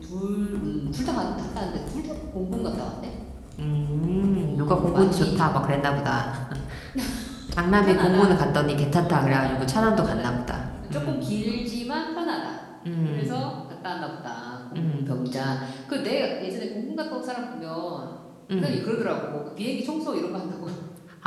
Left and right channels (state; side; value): identical; both; correlation 1.00